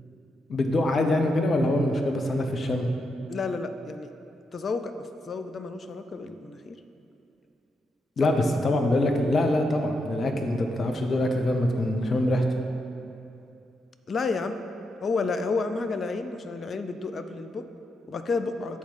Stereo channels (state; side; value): normal; both; correlation 0.83